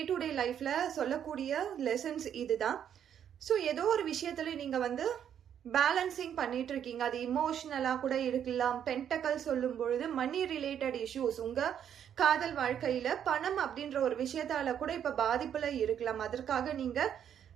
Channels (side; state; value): left; quieter; 9.2 dB